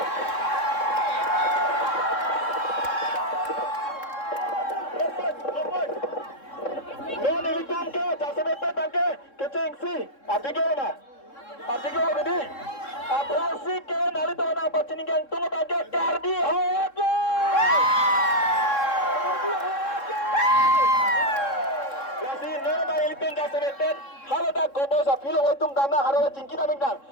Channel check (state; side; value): late; right; 3.7 ms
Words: Operasi ke nalito na pagsiningan tungo baga kardi hoyatlo. Kasi nana ilitong gasebetet haloda gobo sa filo waitung dana harola cingkina mingdang.